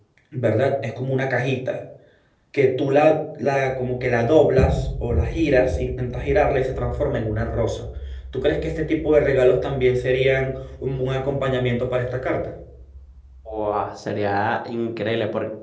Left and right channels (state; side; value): identical; both; correlation 1.00